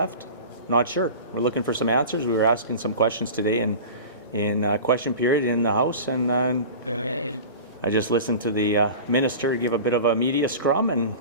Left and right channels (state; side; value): inverted; both; correlation -0.34